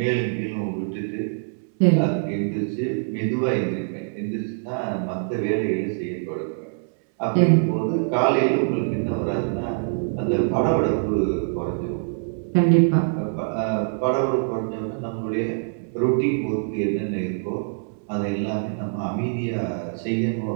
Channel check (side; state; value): left; silent; 63 dB below the other